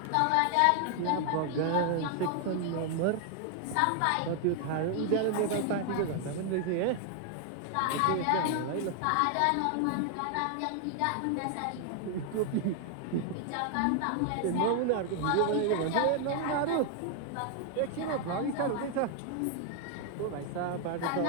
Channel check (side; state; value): both; different; correlation 0.00